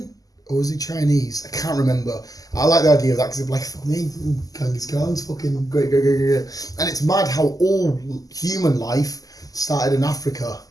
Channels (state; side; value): late; right; 0.17 ms